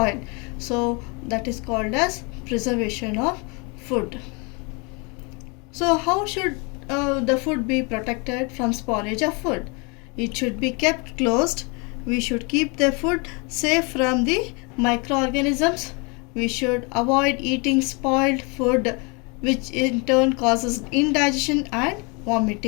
So that is called as preservation of food. So how should the food be protected from spoilage of food? It should be kept closed. We should keep the food safe from the microorganisms. We should avoid eating spoiled food, which in turn causes indigestion and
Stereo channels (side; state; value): right; quieter; 31.1 dB